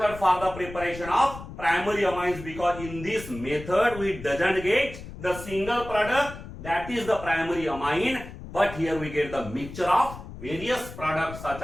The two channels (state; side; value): noise; left; rumble, 13 dB below the sound